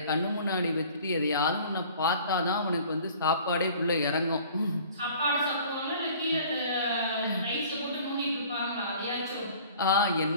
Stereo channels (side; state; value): both; inverted; correlation -0.49